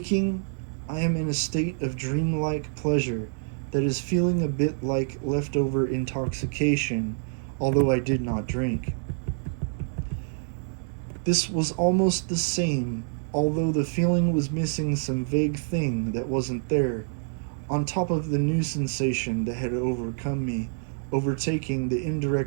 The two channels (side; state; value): left; silent; 60 dB below the other